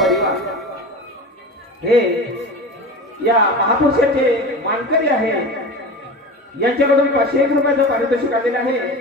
हे या महापुरुषाचे मानकरी आहे. यांच्याकडून 501 रुपयाचं पारितोषिक आलेलं आहे.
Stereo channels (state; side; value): normal; both; correlation 0.30